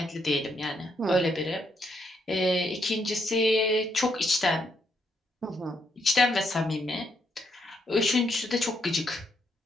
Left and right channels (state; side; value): normal; both; correlation 0.76